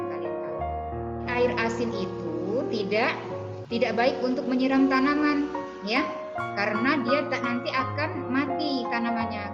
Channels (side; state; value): both; identical; correlation 1.00